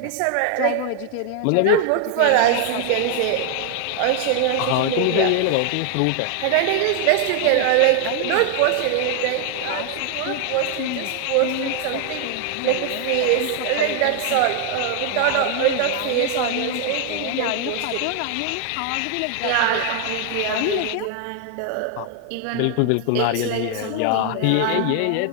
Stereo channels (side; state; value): both; different; correlation 0.00